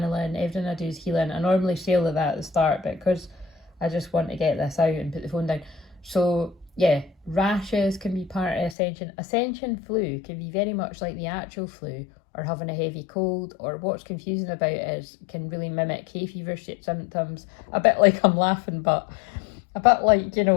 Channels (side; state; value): right; drops out; at 8.8 s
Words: Everything I do is healing. I normally say all of that at the start, but because I just want to get this out and put the phone down. So yeah, rashes can be part of Ascension. Ascension flu can be very much like the actual flu, or having a heavy cold, or what's confusing about it is can really mimic hay fever symptoms. A bit like, I'm laughing, but a bit like,